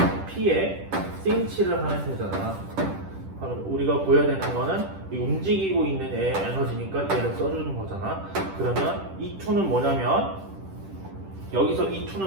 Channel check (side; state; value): left; late; 10 ms